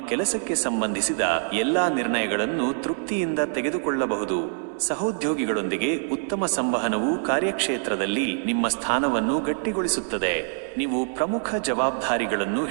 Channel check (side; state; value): left; silent; digital silence